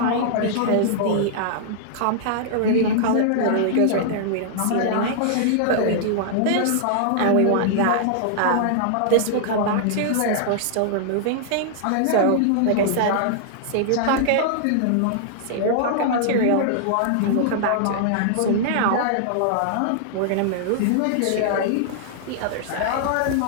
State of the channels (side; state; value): both; different; correlation -0.01